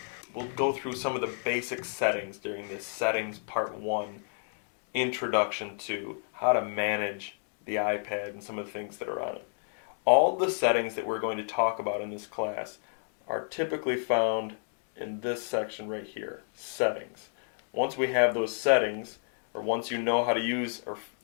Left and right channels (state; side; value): silent; right; 57 dB below the other